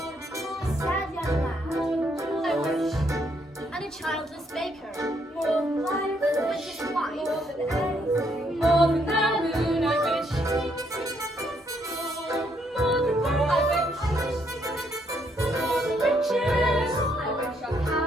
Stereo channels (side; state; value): both; normal; correlation 0.72